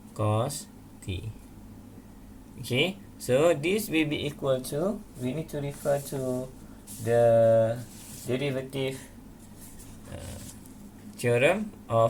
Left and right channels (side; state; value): both; identical; correlation 1.00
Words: cos t. Okay, so this will be equal to, we need to refer to the derivative theorem